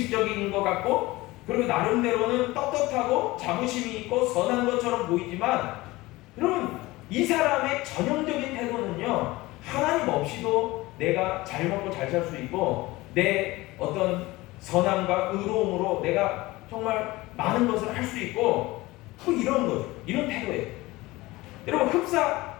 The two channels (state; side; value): quieter; right; 20.0 dB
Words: 것 같고 그리고 나름대로는 떳떳하고 자부심이 있고 선한 것처럼 보이지만 여러분, 이 사람의 전형적인 태도는요, 하나님 없이도 내가 잘 먹고 잘 살 수 있고 내 어떤 선함과 의로움으로 내가 정말 많은 것을 할 수 있고 뭐 이런 거죠. 이런 태도예요. 여러분, 흡사